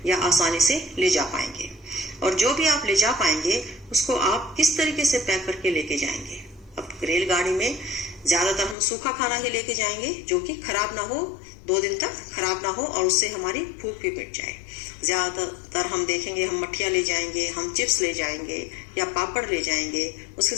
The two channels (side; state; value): right; drops out; at 8.8 s